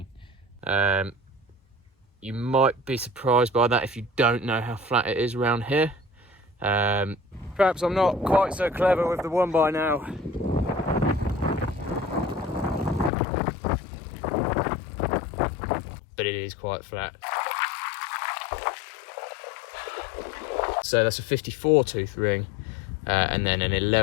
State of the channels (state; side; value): drops out; right; at 13.1 s